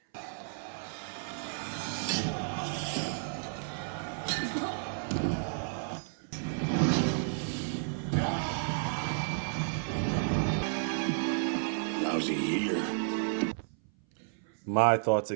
Lousy year. My thoughts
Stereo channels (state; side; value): silent; left; 56 dB below the other